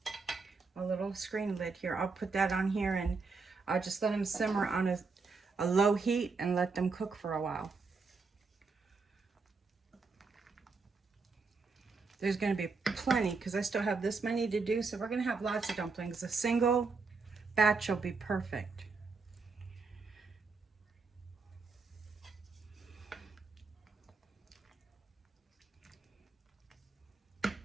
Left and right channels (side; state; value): left; quieter; 4.4 dB